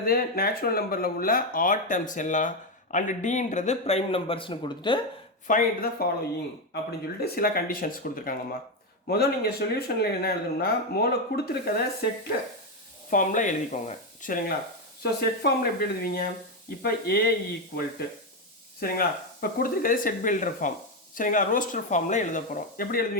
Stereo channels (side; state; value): both; normal; correlation 0.08